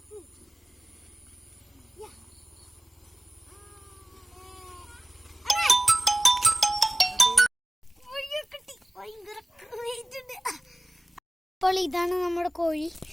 അപ്പോൾ ഇതാണ് നമ്മുടെ കോഴി.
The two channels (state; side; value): normal; both; correlation 0.97